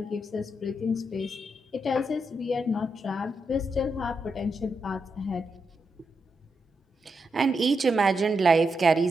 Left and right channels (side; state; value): both; normal; correlation 0.84